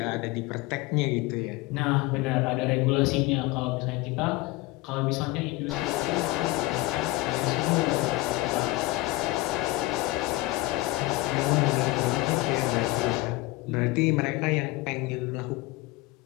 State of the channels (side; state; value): right; quieter; 20.5 dB